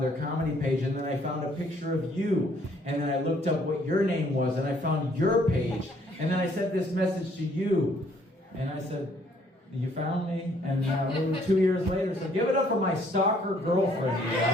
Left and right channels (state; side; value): normal; both; correlation 0.64